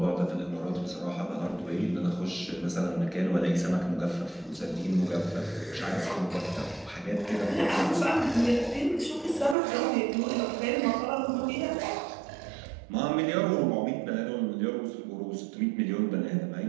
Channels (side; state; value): left; drops out; at 9.6 s